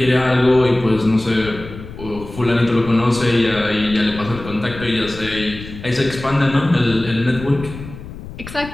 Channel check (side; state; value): left; noise; rumble, 13 dB below the sound